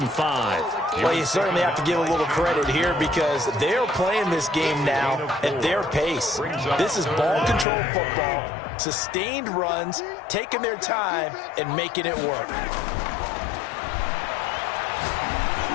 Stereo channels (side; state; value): right; drops out; at 7.7 s